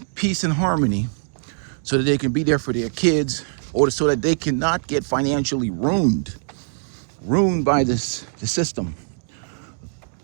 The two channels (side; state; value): left; silent; digital silence